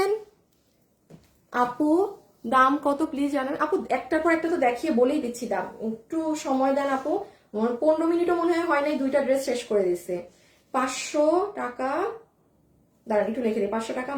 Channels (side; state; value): both; identical; correlation 1.00